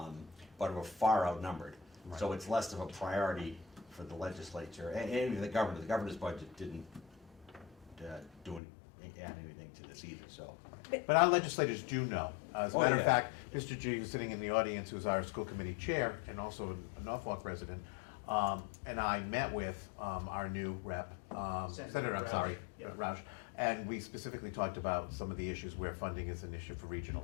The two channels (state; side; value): drops out; right; at 8.6 s